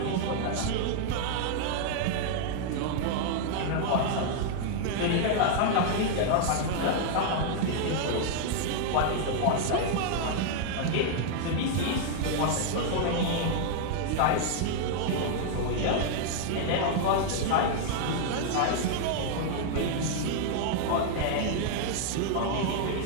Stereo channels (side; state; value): both; different; correlation 0.00